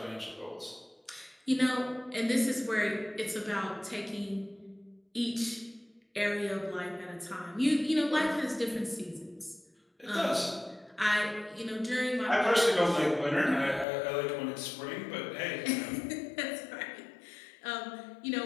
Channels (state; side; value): drops out; right; at 13.9 s